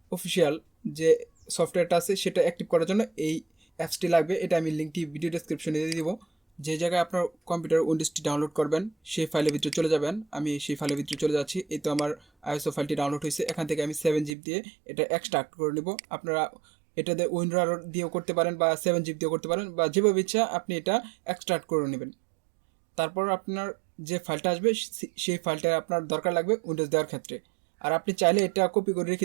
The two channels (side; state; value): left; drops out; at 14.4 s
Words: অফিসিয়াল যে সফটওয়্যারটা আছে সেটা অ্যাক্টিভ করার জন্য এই অ্যাপসটি লাগবে। এটা আমি লিঙ্কটি ভিডিও ডেসক্রিপশনে দিয়ে দিব। যে জায়গায় আপনার কম্পিউটার উইন্ডোজটি ডাউনলোড করবেন সেই ফাইলের ভিতরে চলে যাবেন। আমি সেই ফাইলের ভিতরে চলে যাচ্ছি। এই তো আমার আইএসও ফাইলটি ডাউনলোড হয়েছে। এখান থেকে আমি 7 জিবি দিয়ে এটা এক্সট্রাক্ট করে নেব। আপনারা এটাতে উইন্ডোর দিয়েও করতে পারেন বা 7 জিবি দিয়েও করতে পারেন, বা যেভাবে ইচ্ছা আপনি এটা এক্সট্রাক্ট করে নেবেন। তারপর আপনার যে ফাইলটা আসবে সেই ফাইলটা আপনার দরকার লাগবে উইন্ডোজ দেওয়ার ক্ষেত্রে। আর আপনি চাইলে এটা কপি করে রেখে